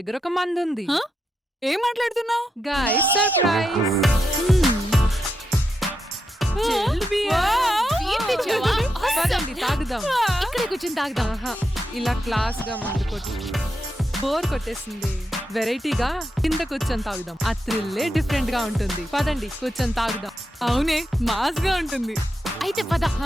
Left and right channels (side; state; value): both; normal; correlation 0.85